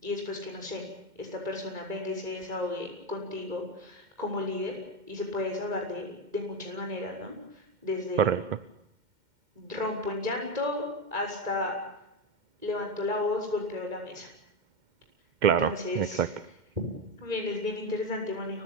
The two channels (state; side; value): late; left; 2.1 ms